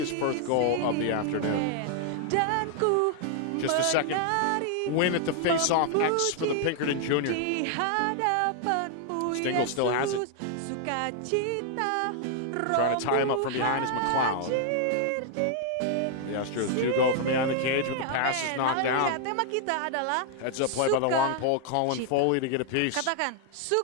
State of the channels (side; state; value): both; different; correlation 0.00